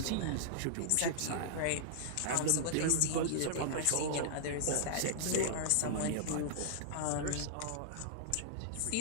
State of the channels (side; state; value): both; different; correlation -0.02